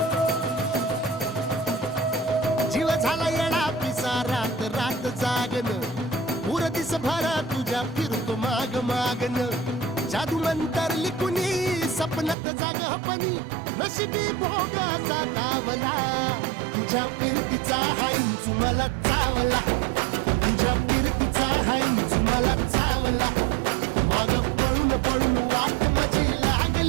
जीव झाला येडा पिसा रात रात जागन पुर दिस भर तुझ्या फिरतो माग मागन जादू मंतर लिकुनी सपनात जागपणी नशिबी भोगाचा दावला तुझ्या फिरतीचा हाईच मला चावला तुझ्या फिरतीचा हाईच मला चावला माग पळून पळून वाट माझी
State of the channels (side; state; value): left; drops out; at 12.4 s